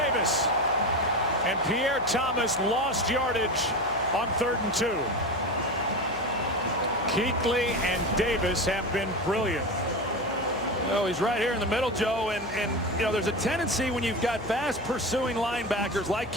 And Pierre Thomas lost yardage on 3rd and 2. Kuechly and Davis have been brilliant. Oh, he's right here in the middle, Joe, and you know, there's a tendency when you've got fast pursuing linebackers like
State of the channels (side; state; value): left; noise; hum, 15 dB below the sound